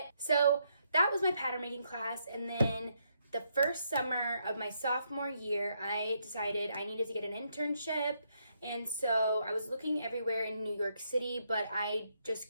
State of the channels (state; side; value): inverted; both; correlation -0.76